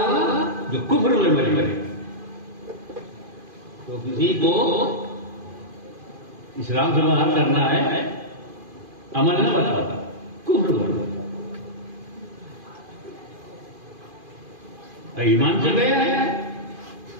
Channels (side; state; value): left; late; 2.5 ms